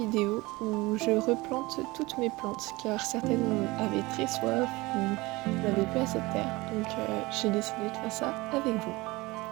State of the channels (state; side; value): quieter; left; 21.9 dB